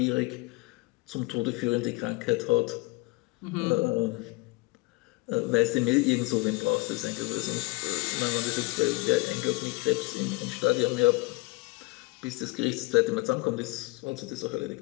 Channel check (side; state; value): right; quieter; 23.4 dB